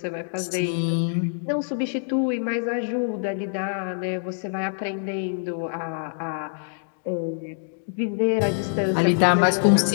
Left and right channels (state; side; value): silent; right; digital silence